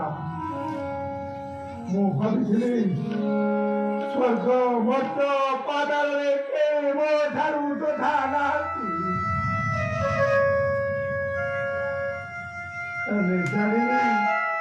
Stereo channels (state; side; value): identical; both; correlation 1.00